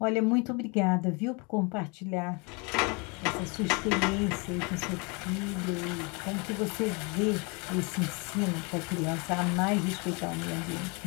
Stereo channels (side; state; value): right; quieter; 30.7 dB